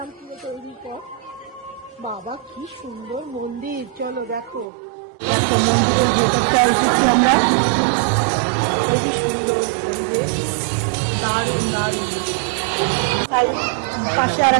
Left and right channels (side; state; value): left; drops out; at 4.7 s